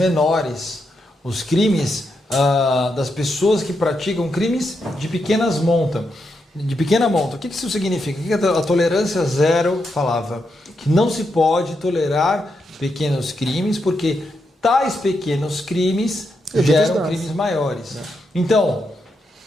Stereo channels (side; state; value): both; normal; correlation 0.83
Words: Os crimes das pessoas que praticam crimes de pequenas monta. De pequena monta. O que isso significa? O que a tolerância zero falava? Que não se pode tolerar pequenos crimes, porque tais pequenos crimes geram crimes maiores. Então,